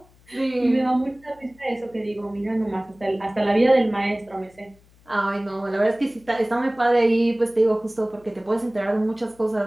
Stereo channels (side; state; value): left; noise; hum, 29 dB below the sound